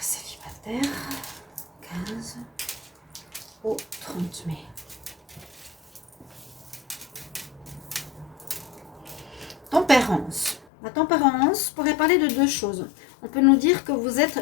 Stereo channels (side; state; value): right; drops out; at 10.7 s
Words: célibataire 15 au 30 mai. Tempérance. La tempérance pourrait parler de deux choses. On peut nous dire que vous êtes